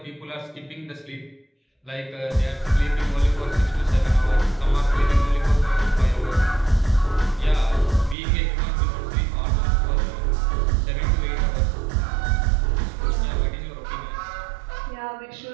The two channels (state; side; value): drops out; left; at 8.2 s